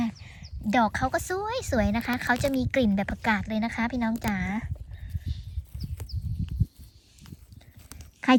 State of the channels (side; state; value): both; identical; correlation 1.00